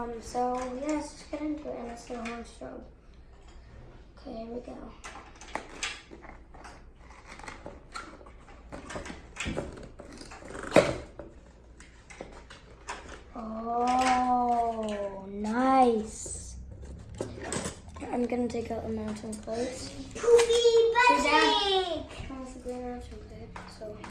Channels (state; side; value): identical; both; correlation 1.00